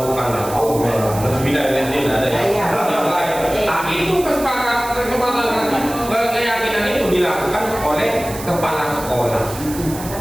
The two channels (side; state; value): right; noise; hiss, 12 dB below the sound